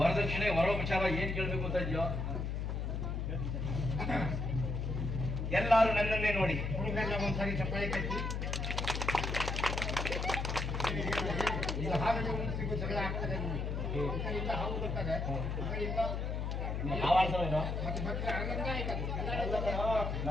ವರದಕ್ಷಿಣೆ ವರೋಪಚಾರ ಏನ್ ಕೇಳ್ಬೇಕು ಅಂತ ಇದೆಯೋ? ಎಲ್ಲರೂ ನನ್ನನ್ನೇ ನೋಡಿ ಹುಡುಗಲ್ಲ ಒಂದ್ಸರಿ ಚಪ್ಪಾಳೆ ಕಟ್ಟಿ. ಈಗ ಹಾಗೆ ಒಂದು ಸಿಗೋ ಜಗಳ ಆಗ್ತದೆ ನಿಮಗೆ. ಈ ಕಡೆಯಿಂದ ಹಾವು ಬರ್ತದೆ, ಈ ಕಡೆಯಿಂದ ಮತ್ತೆ ಮತ್ತೆ ಅರಗಂಗ ಆಯ್ತದೆ.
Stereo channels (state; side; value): noise; left; hum, 2 dB below the sound